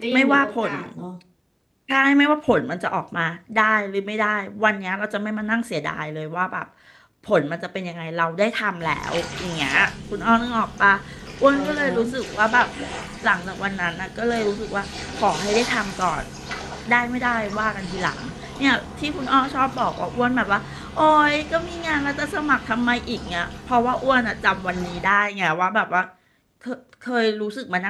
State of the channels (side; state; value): both; identical; correlation 1.00